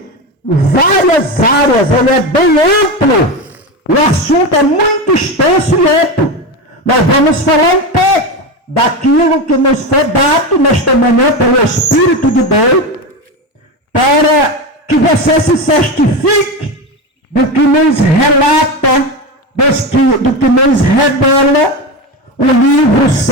várias áreas, ele é bem amplo, o assunto é muito extenso e amplo. Nós vamos falar um pouco daquilo que nos foi dado nesta manhã pelo Espírito de Deus, para que você se certifique do que nos relata, do que nos revela o livro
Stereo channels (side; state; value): both; normal; correlation 0.19